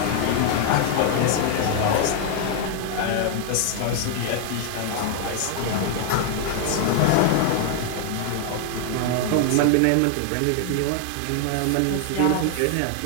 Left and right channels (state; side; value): different; both; correlation 0.00